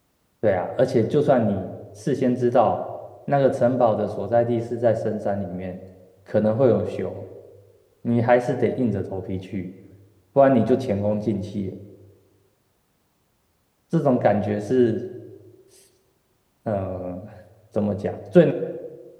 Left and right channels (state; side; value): identical; both; correlation 1.00